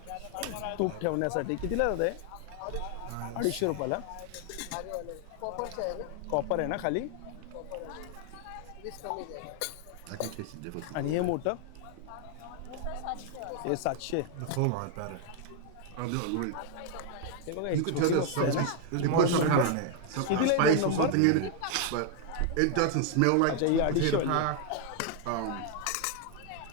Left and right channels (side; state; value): both; different; correlation 0.00